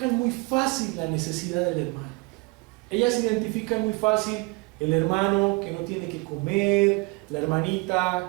muy fácil la necesidad del hermano. Ellas identifican muy fácil el hermano que no tiene que comer, la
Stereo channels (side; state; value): left; quieter; 27.4 dB